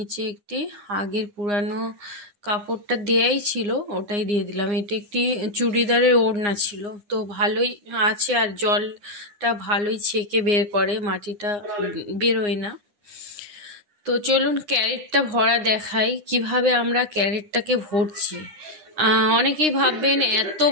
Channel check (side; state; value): left; late; 9.7 ms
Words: একটি আগের পুরানো কাপড়টা দেয়াই ছিল ওটাই দিয়ে দিলাম। এটা একটি চুড়িদারের ওড়না ছিল, তো ভালোই আছে আর জলটা ভালোই ছেঁকে বের করে, মাটিটা বেরোয় না। তো চলুন ক্যারেটটা ভরা দেখাই কিভাবে আমরা ক্যারেটটাকে ভরছি। অনেকেই ভাববেন এত